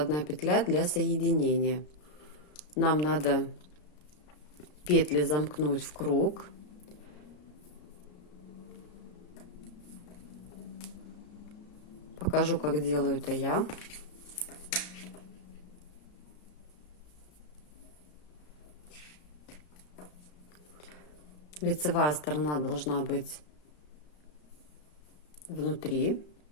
петля для соединения. Нам надо петли замкнуть в круг. Покажу, как делаю это я. Лицевая сторона должна быть внутри.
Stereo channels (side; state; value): right; late; 33 ms